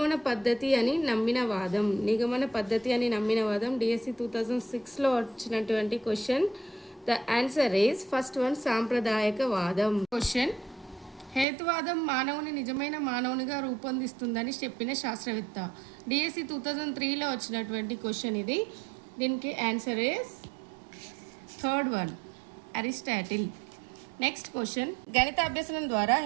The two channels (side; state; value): left; drops out; at 11.5 s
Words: పద్ధతి అని నమ్మిన వాదం. డిఎస్సి 2006లో వచ్చినటువంటి question. The answer is first one, సాంప్రదాయక వాదం. క్వశ్చన్, హేతువాదం మానవుని నిజమైన మానవునిగా రూపొందిస్తుందని చెప్పిన శాస్త్రవేత్త. డిఎస్సి 2003లో వచ్చినటువంటి క్వశ్చన్ ఇది. దీనికి answer is third one, Aristotle. Next question, గణిత అభ్యసనం ద్వారా